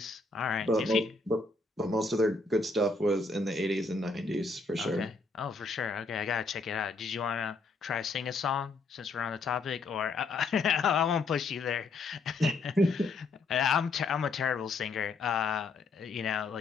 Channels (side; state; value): right; quieter; 3.7 dB